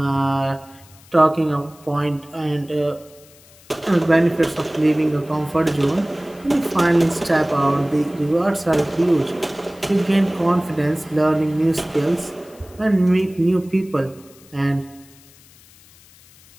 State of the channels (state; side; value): noise; left; hiss, 26 dB below the sound